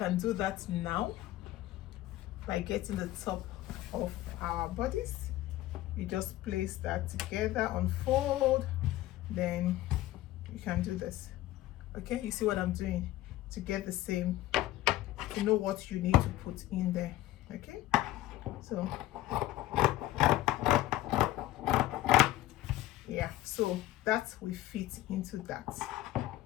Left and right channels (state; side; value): quieter; right; 15.3 dB